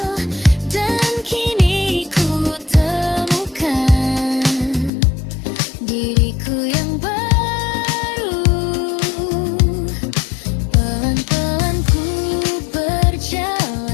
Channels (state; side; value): drops out; right; at 4.9 s